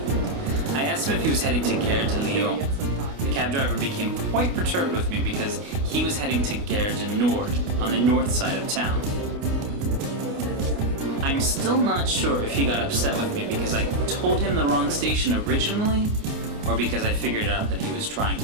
I asked him if he was heading to Gare de Lyon. The cab driver became quite perturbed with me because he was heading to Gare du Nord, on the north side of town. I'm still not sure if he got upset with me because I told him the wrong station originally, or because I figured out that he was trying to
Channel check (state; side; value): late; left; 28 ms